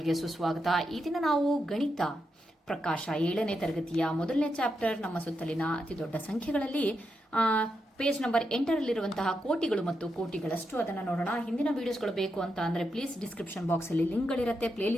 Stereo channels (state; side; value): normal; both; correlation 0.84